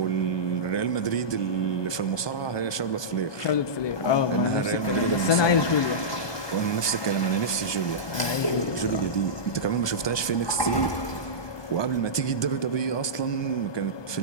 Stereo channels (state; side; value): late; right; 1.2 ms